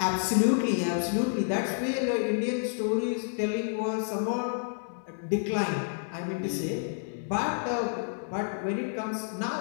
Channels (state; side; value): silent; right; digital silence